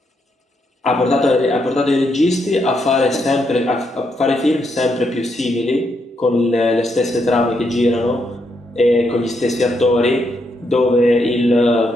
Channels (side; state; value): both; normal; correlation 0.78